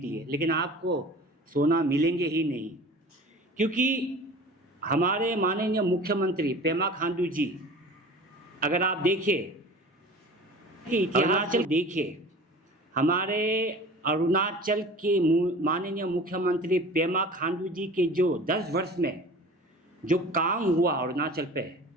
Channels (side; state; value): both; normal; correlation 0.41